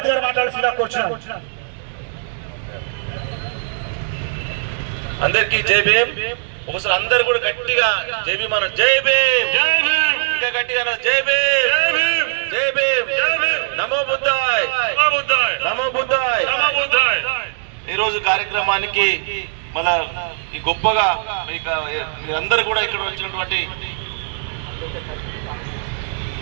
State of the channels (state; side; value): silent; left; digital silence